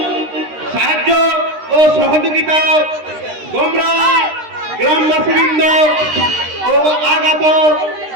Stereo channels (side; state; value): left; late; 13 ms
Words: সাহায্য ও সহযোগিতা গৌড়া গ্রামবাসীবৃন্দ ও আগত